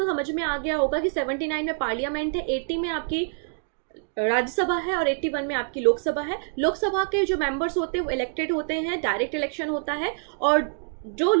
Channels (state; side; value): silent; left; digital silence